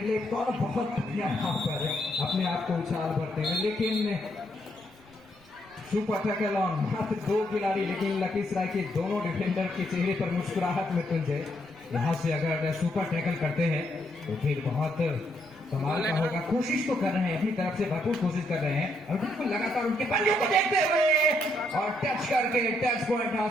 लेफ्ट कॉर्नर बहुत बढ़िया यहाँ पर अपने आप को उछाल भरते हैं, लेकिन सुपर टैकल ऑन मात्र 2 खिलाड़ी। लेकिन लखीसराय के दोनों डिफेंडर के चेहरे पर मुस्कुराहट में तुंजे। यहाँ से अगर सुपर टैकल करते हैं तो फिर बहुत कमाल का होगा। कोशिश तो कर रहे हैं, अपनी तरफ से भरपूर कोशिश कर रहे हैं, और बिल्कुल लगातार उनके पंजों को देखते हुए और टच करके टच पॉइंट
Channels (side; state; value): right; noise; rumble, 28 dB below the sound